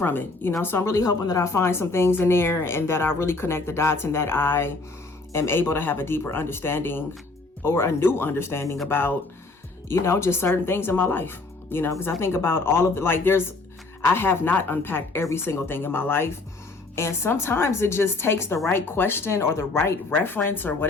it. You know, so I'm really hoping that I find some things in there and that I really connect the dots, and that I am able to have a deeper understanding, or a new understanding about, you know, just certain things in my life. You know, because I think about all of it, like, I have not unpacked every single thing in my life. And sometimes it just takes the right question or the right reference or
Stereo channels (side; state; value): right; quieter; 3.5 dB